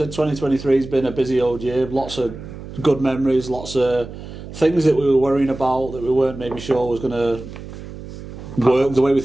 2023 has been a busy old year. Lots of good memories, lots of things that we were worrying about that we weren't maybe sure was going to work the way we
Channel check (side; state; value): right; noise; hum, 13 dB below the sound